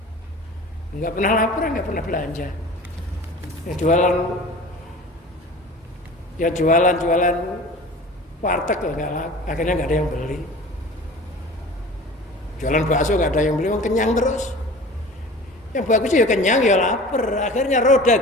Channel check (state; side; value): normal; both; correlation 0.40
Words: Nggak pernah lapar nggak pernah belanja. Ya jualan warteg loh nggak laku. Akhirnya nggak ada yang beli. Jualan bakso gak ada yang beli, kenyang terus. Yang bagus ya kenyang ya lapar. Akhirnya roda